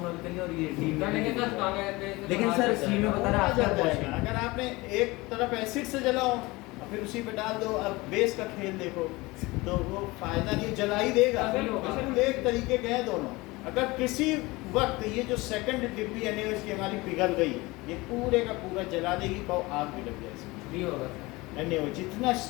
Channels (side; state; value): right; quieter; 22.3 dB